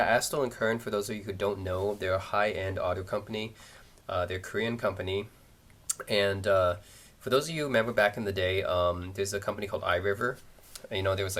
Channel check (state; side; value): identical; both; correlation 1.00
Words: Kern, for those of you who don't know, they're a high-end audio company. They're a Korean company, and for those of you who remember back in the day, there's a company called iRiver. There was